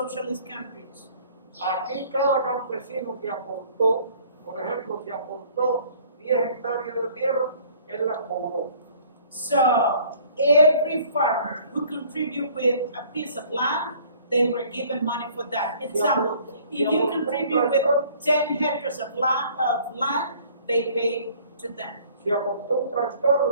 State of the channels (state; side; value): inverted; both; correlation -0.54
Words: countries. Aquí cada campesino que aportó, por ejemplo, si aportó 10 hectáreas de tierra, él las cobró. So every farmer who contribute with a piece of land, they were given money for that. Example, if you contribute with 10 hectares of land, they pay to them. Si aportó un